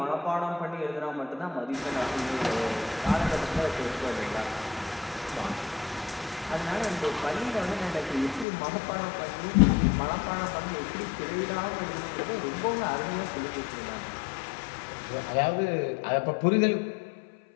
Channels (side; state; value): right; drops out; at 8.5 s